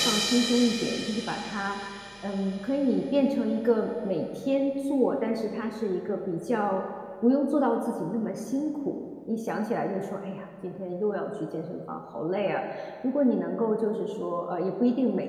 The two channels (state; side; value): identical; both; correlation 1.00